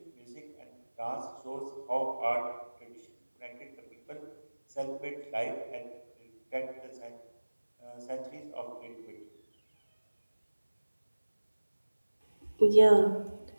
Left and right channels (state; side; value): inverted; both; correlation -1.00